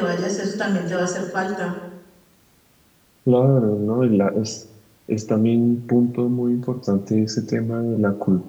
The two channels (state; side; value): identical; both; correlation 1.00